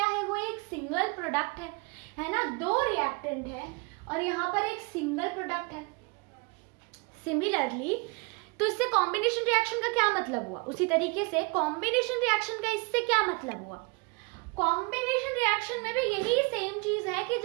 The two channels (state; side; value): quieter; left; 30.4 dB